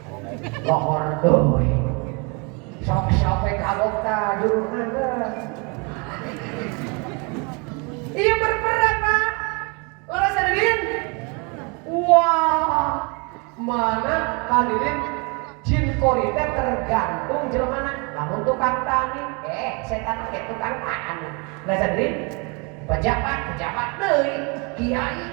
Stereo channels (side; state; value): left; quieter; 31.7 dB